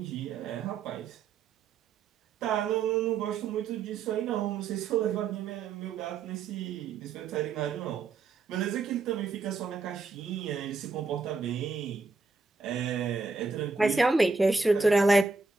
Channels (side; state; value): left; quieter; 4.4 dB